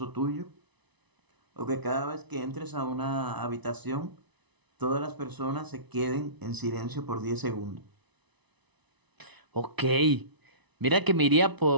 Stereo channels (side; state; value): left; late; 1.0 ms